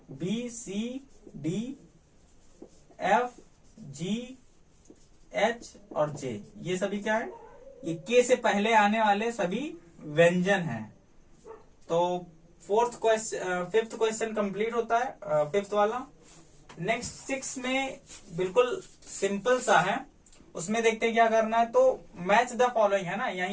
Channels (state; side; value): identical; both; correlation 1.00